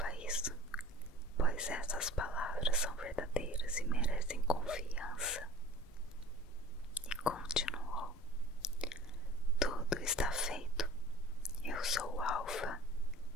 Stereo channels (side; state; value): both; normal; correlation 0.45